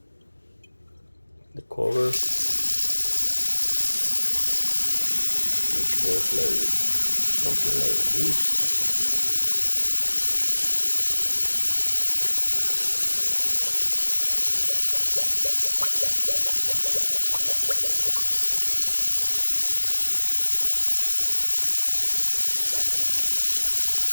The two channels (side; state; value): both; inverted; correlation -1.00